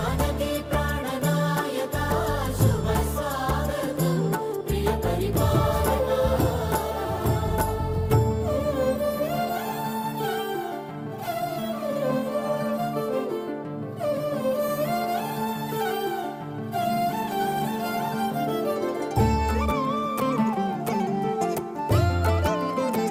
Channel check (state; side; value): identical; both; correlation 1.00